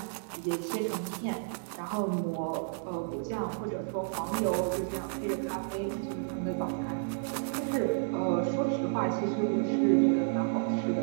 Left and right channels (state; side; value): silent; left; digital silence